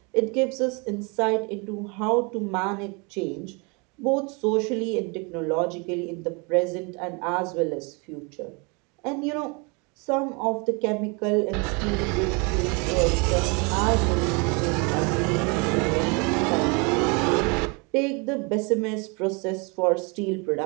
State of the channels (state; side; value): quieter; left; 31.1 dB